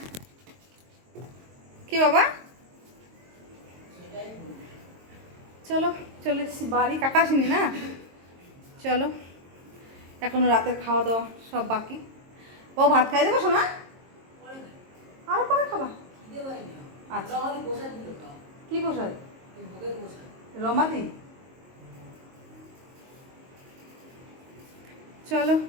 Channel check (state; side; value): late; left; 22 ms